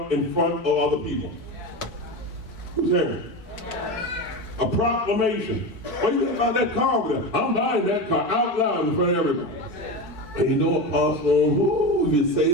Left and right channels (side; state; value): right; late; 4.6 ms